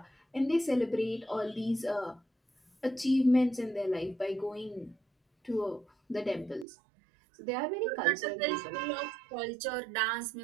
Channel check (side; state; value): left; drops out; at 6.7 s